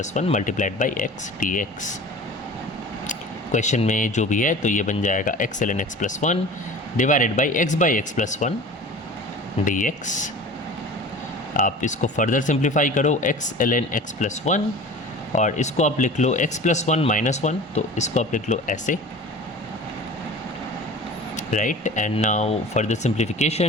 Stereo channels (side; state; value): both; normal; correlation 0.39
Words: 1 multiplied by x dx। Question में जो भी है तो ये बन जाएगा x ln x plus 1 divided by x plus 1 dx। आप इसको फर्दर सिंप्लीफाई करो, x ln x प्लस 1, और इसको आप लिख लो x प्लस 1 माइनस 1, तो इसको आप लिख लो ऐसे, right, and now further